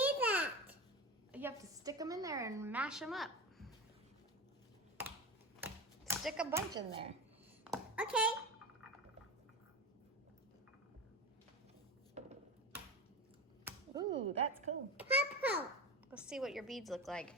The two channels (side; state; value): both; normal; correlation 0.26